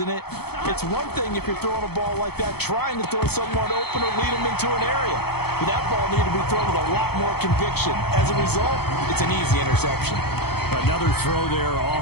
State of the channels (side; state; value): right; late; 0.97 ms